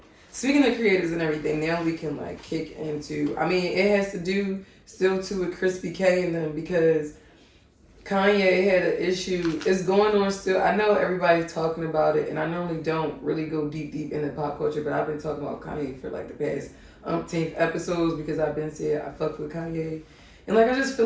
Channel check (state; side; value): identical; both; correlation 1.00